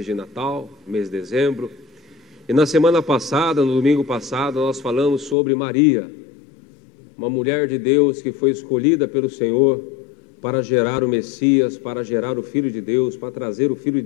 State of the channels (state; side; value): drops out; right; at 5.4 s